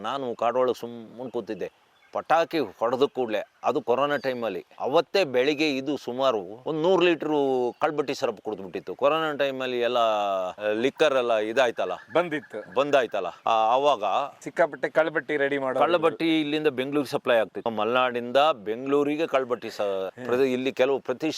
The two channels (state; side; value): identical; both; correlation 1.00